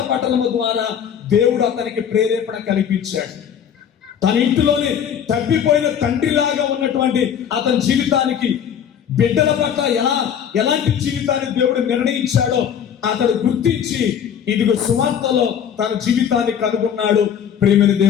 పఠనము ద్వారా దేవుడు అతనికి ప్రేరేపణ కల్పించాడు. తన ఇంటిలోనే తప్పిపోయిన తండ్రిలాగా ఉన్నటువంటి అతని జీవితానికి, బిడ్డల పట్ల ఎలాంటి జీవితాన్ని దేవుడు నిర్ణయించాడో అతడు గుర్తించి ఇదిగో సువార్తలో తన జీవితాన్ని కనుగొన్నాడు. ప్రేమని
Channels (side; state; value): right; quieter; 8.6 dB